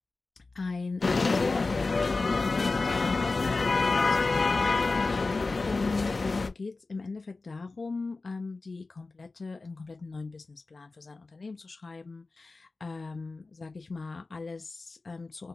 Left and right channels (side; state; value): right; quieter; 3.6 dB